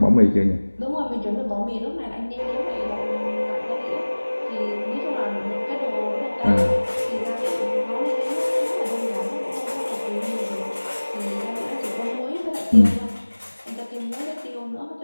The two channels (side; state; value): both; inverted; correlation -1.00